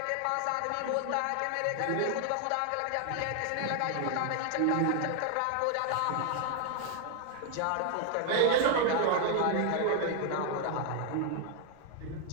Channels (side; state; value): both; different; correlation 0.00